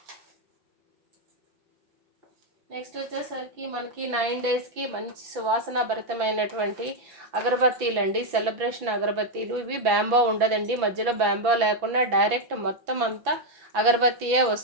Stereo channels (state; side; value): late; left; 6.0 ms